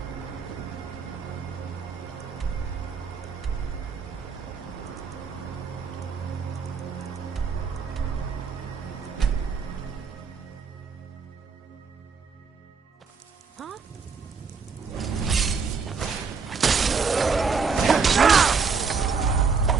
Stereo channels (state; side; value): quieter; left; 5.3 dB